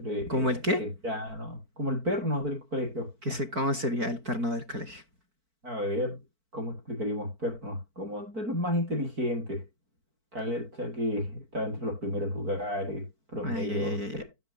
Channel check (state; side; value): late; left; 4.5 ms